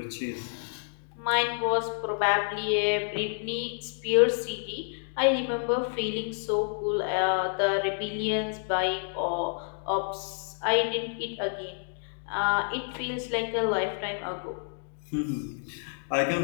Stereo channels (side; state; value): right; silent; digital silence